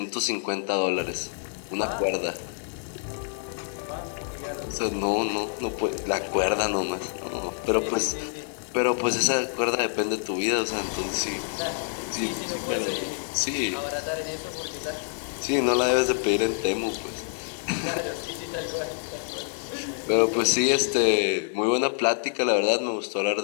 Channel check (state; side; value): silent; right; 60 dB below the other